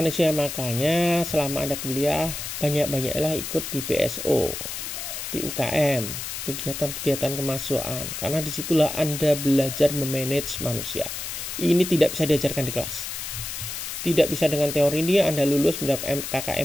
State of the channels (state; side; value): noise; left; hiss, 6 dB below the sound